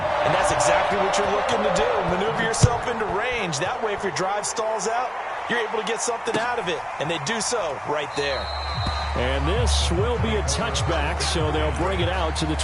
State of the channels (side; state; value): both; identical; correlation 1.00